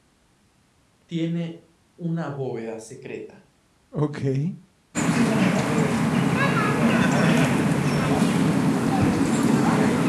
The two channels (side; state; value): both; identical; correlation 1.00